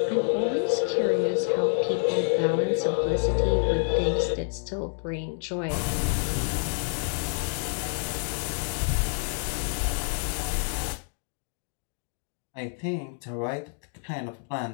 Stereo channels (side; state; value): right; silent; 59 dB below the other